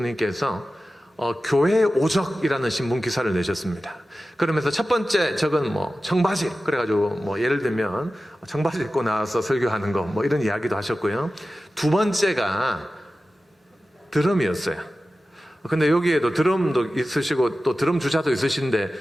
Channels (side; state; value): both; normal; correlation 0.95